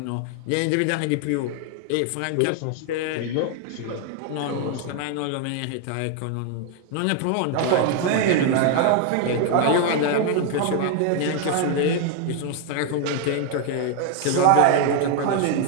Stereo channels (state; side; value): different; both; correlation 0.00